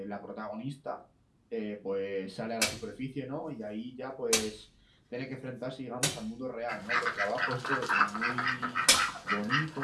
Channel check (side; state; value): both; identical; correlation 1.00